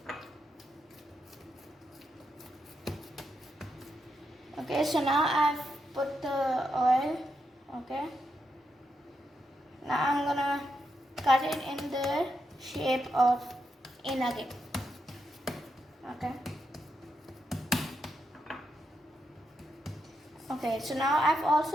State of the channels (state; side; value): normal; both; correlation 0.83